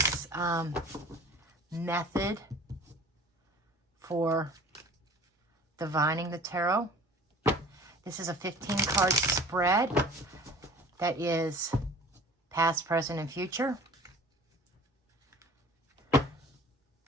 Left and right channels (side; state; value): both; normal; correlation 0.45